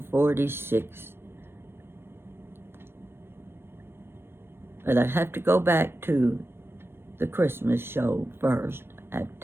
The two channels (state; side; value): late; left; 0.11 ms